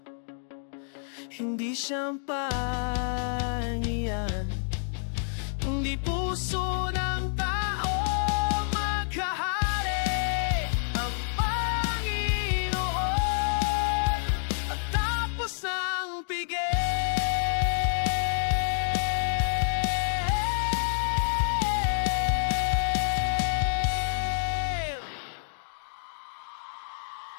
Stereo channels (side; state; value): right; silent; digital silence